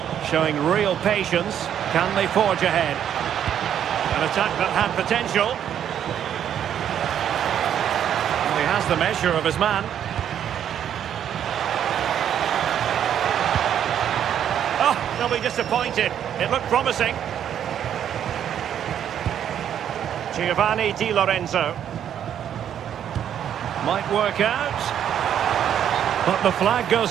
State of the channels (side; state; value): left; quieter; 9.6 dB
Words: Showing real patience. Can they forge ahead? An attack that had potential. Well, he has the measure of his man. Oh, they'll be disappointed. It looked promising. Giovanni Di Lorenzo. Might work out. But the flag